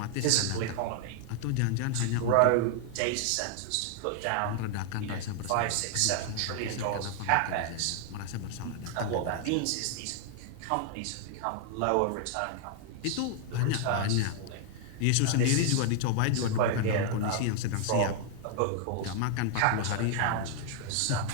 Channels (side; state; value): both; different; correlation 0.00